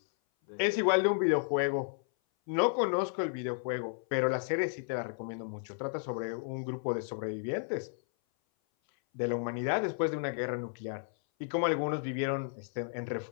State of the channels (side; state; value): right; silent; 56 dB below the other